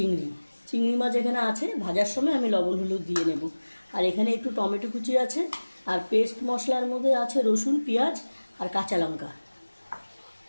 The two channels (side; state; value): both; inverted; correlation -1.00